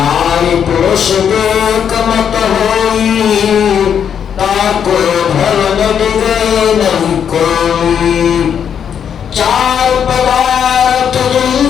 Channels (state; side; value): quieter; right; 8.1 dB